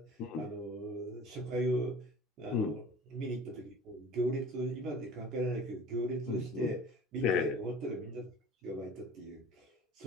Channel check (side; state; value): both; normal; correlation 0.44